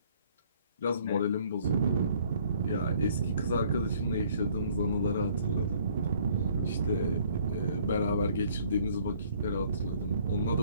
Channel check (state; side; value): inverted; both; correlation -0.60